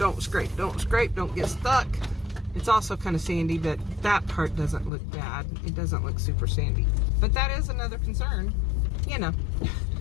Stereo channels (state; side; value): drops out; right; at 4.9 s